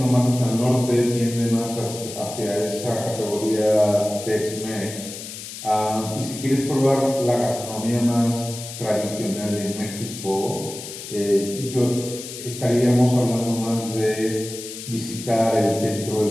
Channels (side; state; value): left; noise; hiss, 11 dB below the sound